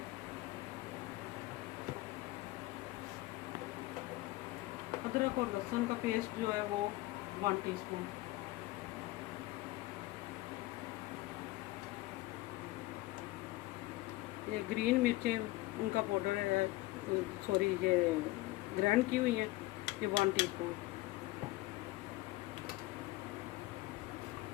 अदरक और लहसुन का पेस्ट जो है वो 1 टीस्पून। ये ग्रीन मिर्चें उनका पाउडर है, सॉरी ये ग्राइंड की हुई है, ये 1 टीस्पून।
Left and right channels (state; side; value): quieter; right; 19.4 dB